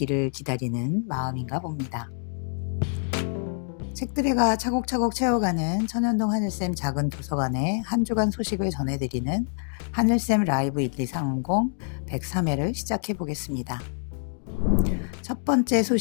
기다리는 마음인가 봅니다. 책들이가 차곡차곡 채워가는 천연동 하늘쌤 작은 도서관의 한 주간 소식을 전해드리는 하늘쌤 라이브 1230 103회를 시작해 보겠습니다. 첫 번째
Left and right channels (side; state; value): right; silent; 57 dB below the other